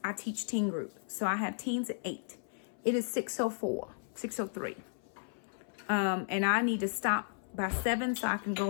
I teach teen group. So I have teens at 8. It is 6:04, 6:03. And I need to stop by 7 so I can go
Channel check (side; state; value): right; silent; 55 dB below the other